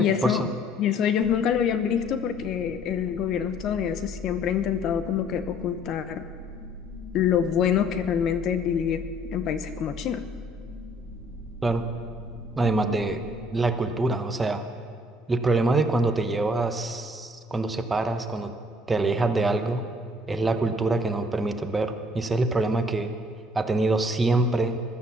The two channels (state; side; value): normal; both; correlation 0.59